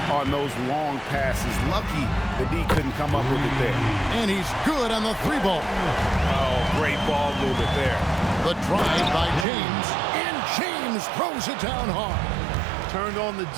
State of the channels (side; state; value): left; drops out; at 9.5 s